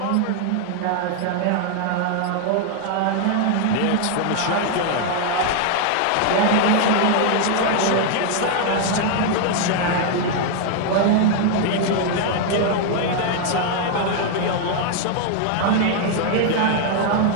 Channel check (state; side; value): different; both; correlation 0.00